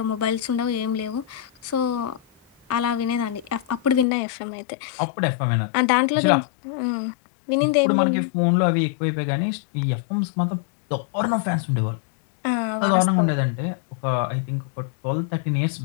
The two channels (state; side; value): drops out; right; at 4.0 s